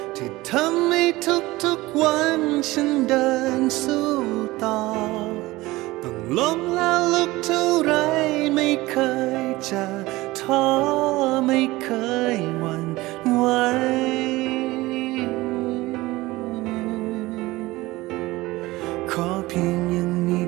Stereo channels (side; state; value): left; quieter; 19.6 dB